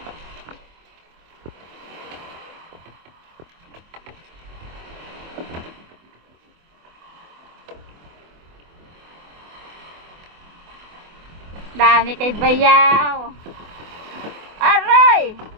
Dami kay Bayaw. Aray!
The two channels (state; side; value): late; left; 24 ms